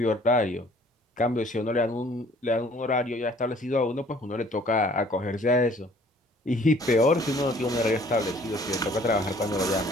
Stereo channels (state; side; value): normal; both; correlation 0.56